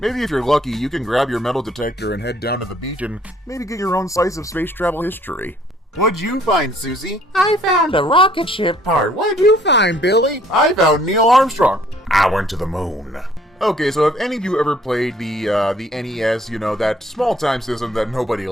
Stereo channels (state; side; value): normal; both; correlation 0.60